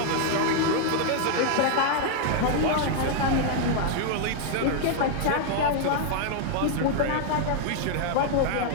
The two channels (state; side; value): different; both; correlation 0.00